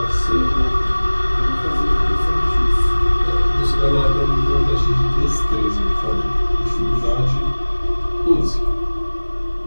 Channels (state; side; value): inverted; both; correlation -1.00